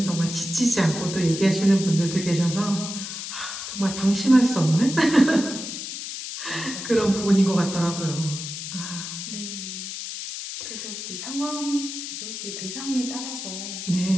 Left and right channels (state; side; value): noise; left; hiss, 7 dB below the sound